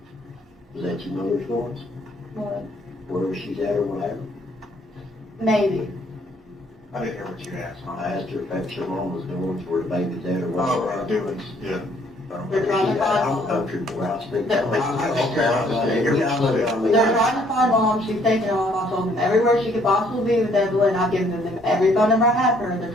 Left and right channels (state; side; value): normal; both; correlation 0.64